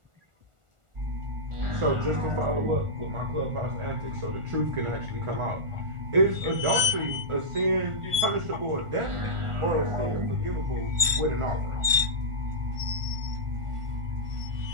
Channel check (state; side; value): late; left; 1.4 ms